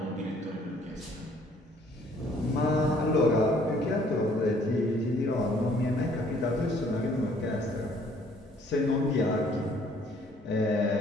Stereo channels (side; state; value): both; normal; correlation 0.60